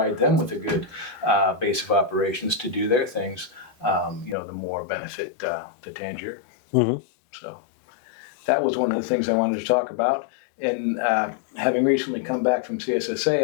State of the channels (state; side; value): drops out; right; at 4.4 s